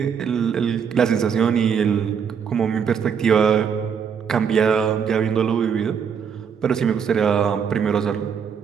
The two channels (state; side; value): quieter; left; 7.1 dB